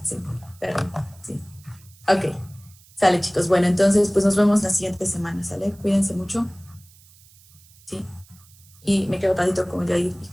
sí, perdón, sí. Ok, sale, chicos. Bueno, entonces, pues nos vemos la siguiente semana, ¿sale? Cuídense mucho. Sí. Y me quedo tantito con Jair y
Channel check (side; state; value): right; noise; hiss, 27 dB below the sound